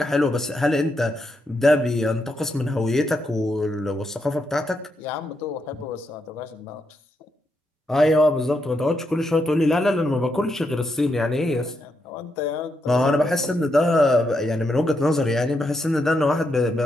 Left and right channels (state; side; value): normal; both; correlation 0.81